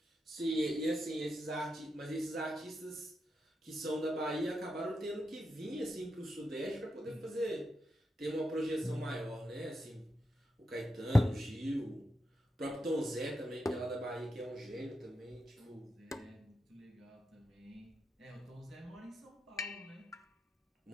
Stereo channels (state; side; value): normal; both; correlation 0.86